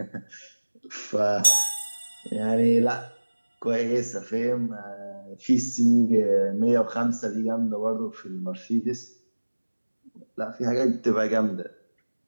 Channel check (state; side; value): inverted; both; correlation -1.00